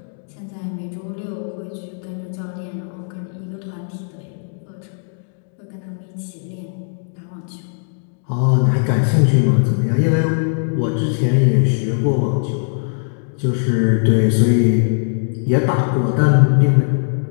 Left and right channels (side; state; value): right; silent; digital silence